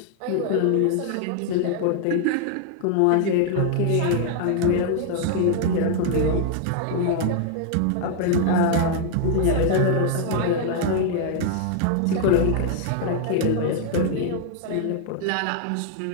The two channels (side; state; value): both; different; correlation 0.00